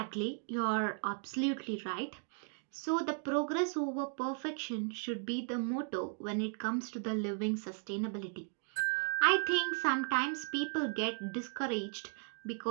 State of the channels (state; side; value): silent; left; 54 dB below the other